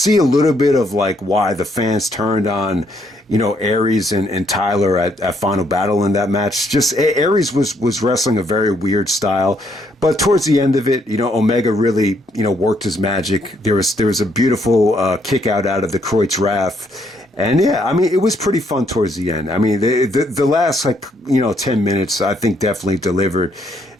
a little bit of like why the fans turned on, Aries and Tyler at Final Battle in that match. Just Aries was wrestling a very weird style, but towards the end of it, Omega really, worked his magic. There was a beautiful kick out of the Kreutz Wrath. And yeah, I mean, it was pretty fun towards the end. I mean, the last 10 minutes, I think definitely delivered.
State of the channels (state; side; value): normal; both; correlation 0.72